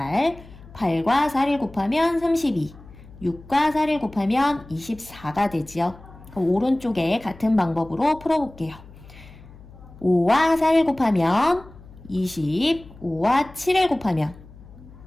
8과 4를 곱하면 32, 6과 4를 곱하면 24가 되지요. 그럼 오른쪽에 같은 방법으로 풀어볼게요. 5와 4를 곱하면 20, 5와 7을 곱하면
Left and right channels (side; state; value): left; noise; hum, 20 dB below the sound